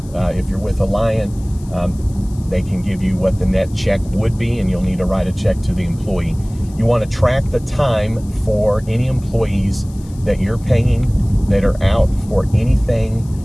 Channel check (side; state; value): left; noise; hiss, 25 dB below the sound